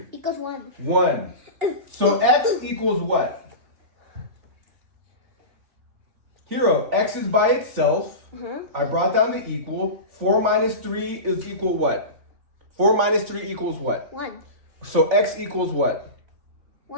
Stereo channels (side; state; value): left; late; 3.5 ms